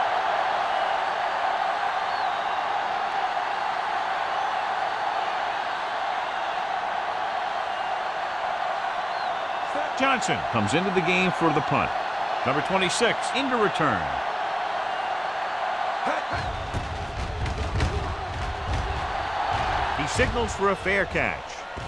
Johnson comes into the game for the punt. Number 26 into return. He signals for a fair catch.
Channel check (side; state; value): both; identical; correlation 1.00